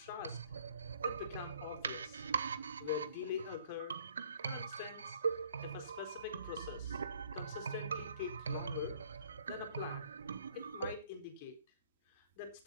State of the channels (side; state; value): both; inverted; correlation -0.60